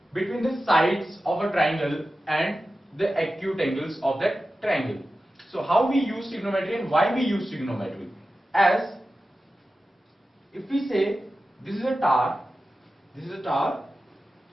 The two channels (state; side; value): normal; both; correlation 0.93